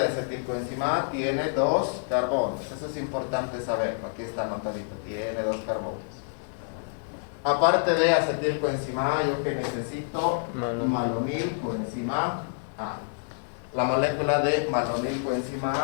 acetilcoenzima A tiene dos carbonos. Eso es importante saberlo. Aquí está anotadito. Tiene dos carbonos. Aparte de acetilcoenzima A, yo que necesito malonilcoenzima A. La molécula de malonilcoenzima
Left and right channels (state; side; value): silent; right; 60 dB below the other